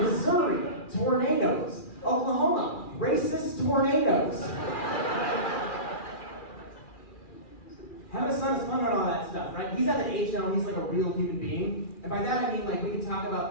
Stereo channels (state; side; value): late; right; 2.4 ms